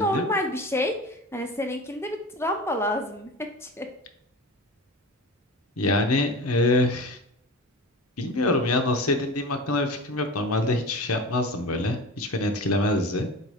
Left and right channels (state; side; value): normal; both; correlation 0.32